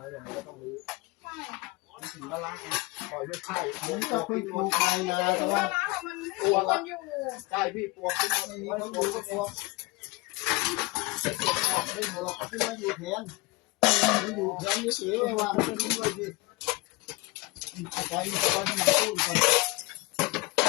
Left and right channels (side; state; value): right; quieter; 24.2 dB